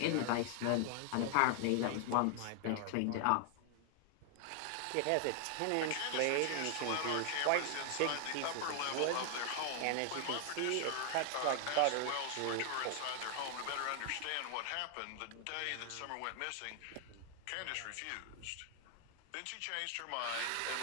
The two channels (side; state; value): both; different; correlation 0.00